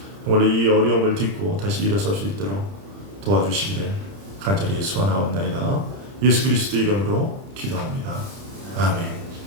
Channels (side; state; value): left; late; 30 ms